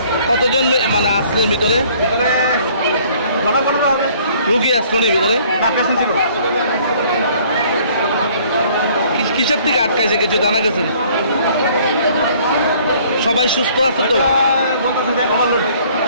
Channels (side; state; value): both; inverted; correlation -0.58